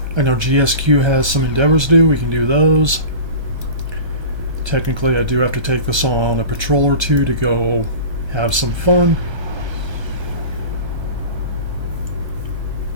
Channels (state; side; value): late; left; 1.3 ms